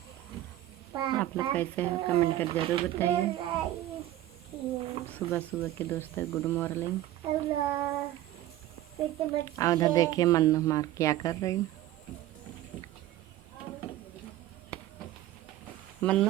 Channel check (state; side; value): quieter; left; 14.3 dB